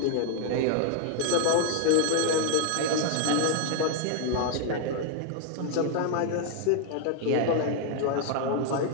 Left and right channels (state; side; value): different; both; correlation 0.00